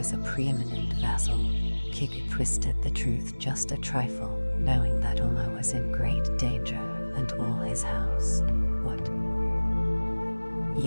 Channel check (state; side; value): inverted; both; correlation -1.00